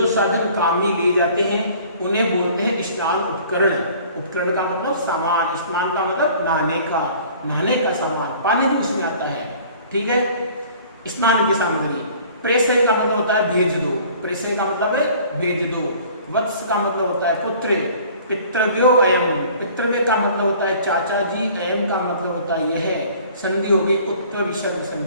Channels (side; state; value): both; inverted; correlation -0.50